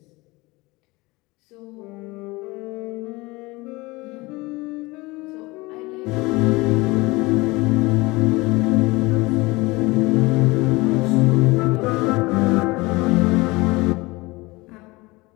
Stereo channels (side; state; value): right; quieter; 22.8 dB